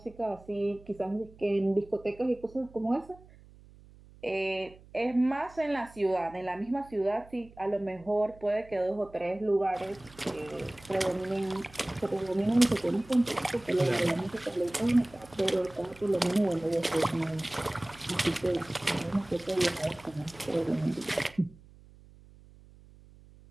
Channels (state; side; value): noise; right; hum, 23 dB below the sound